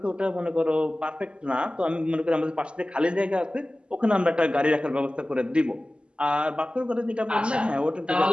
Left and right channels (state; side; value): late; left; 0.053 ms